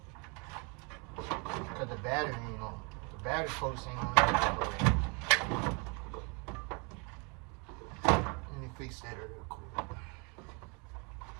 Cause the battery ain't on. The battery post ain't on. Let me fix that real quick.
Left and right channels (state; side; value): quieter; left; 32.7 dB